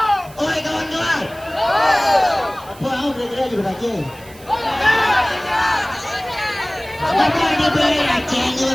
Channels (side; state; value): right; noise; hiss, 22 dB below the sound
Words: oi kawan-kawan, apa aku kira-kira juga Aceh? Bapak dia beli Aceh,